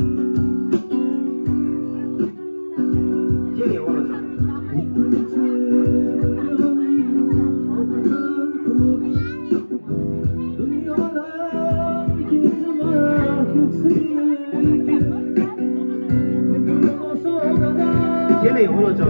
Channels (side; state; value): both; inverted; correlation -1.00